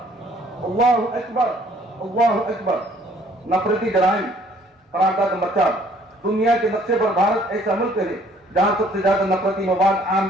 अल्लाहु अकबर, अल्लाहु अकबर। नफरती जराइम। करारदाद नंबर 4, दुनिया के नक्शे पर भारत ऐसा मुल्क है जहाँ सबसे ज्यादा नफरती मवाद आम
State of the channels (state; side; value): normal; both; correlation 0.60